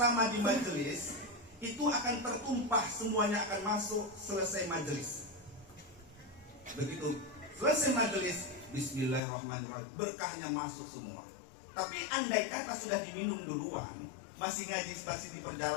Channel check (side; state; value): right; drops out; at 9.2 s